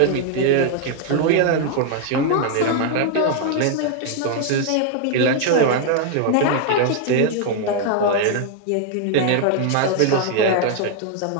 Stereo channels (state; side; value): different; both; correlation 0.00